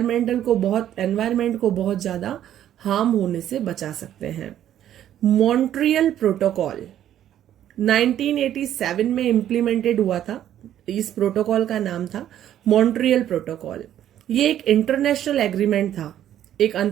को बहुत ज्यादा हार्म होने से बचा सकते हैं. मॉन्ट्रियल प्रोटोकॉल 1987 में इम्प्लीमेंटेड हुआ था. इस प्रोटोकॉल का नाम था मॉन्ट्रियल प्रोटोकॉल. ये एक इंटरनेशनल एग्रीमेंट था, एक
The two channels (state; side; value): quieter; left; 11.2 dB